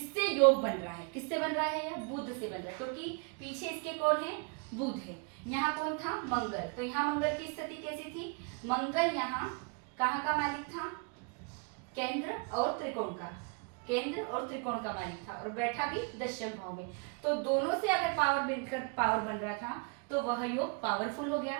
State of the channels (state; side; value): quieter; left; 35.4 dB